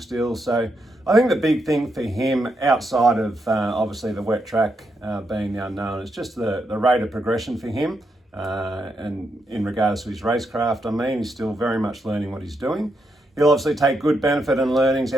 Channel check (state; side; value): normal; both; correlation 0.81